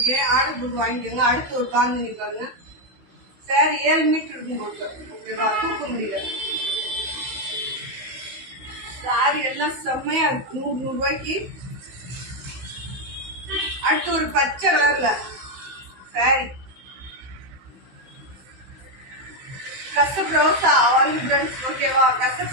ஆர்டர் போட்டு வாங்கிக்கோங்க. அடுத்து ஒரு பாந்தி பாருங்க. சாரி 7 மீட்டர் இருக்கும் போட்டு. ஓகேவா? தூக்க முடியல. சாரி எல்லாம் செம்மையா இருக்கு. 100 ரூபாய்க்கு. அடுத்து ஒரு பச்சை கலர்ல சாரி கசப் ரோசா வந்து ஃப்ரெண்ட்ஸ். ஓகேவா?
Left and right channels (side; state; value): left; late; 16 ms